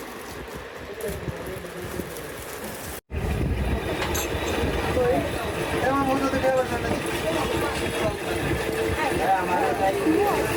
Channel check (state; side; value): identical; both; correlation 1.00